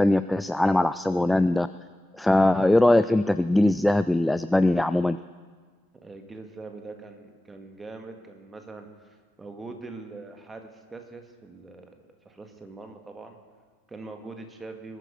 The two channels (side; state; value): both; normal; correlation 0.97